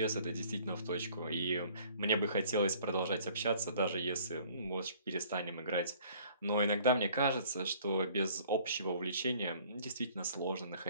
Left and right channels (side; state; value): both; inverted; correlation -0.55